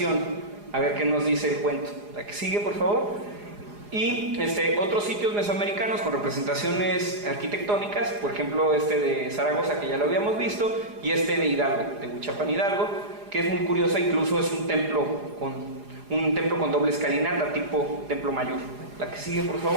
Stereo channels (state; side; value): late; left; 4.9 ms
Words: a ver qué nos dice el cuento. La que sigue, por favor. Y otros sitios mesoamericanos con representaciones arquitectónicas, por ejemplo de Zaragoza, que ya lo habíamos visto, y de Hidalgo, de Huichapan Hidalgo, que es muy curiosa. Incluso es un templo con doble escalinata, tipo templo mayor. La que sigue, por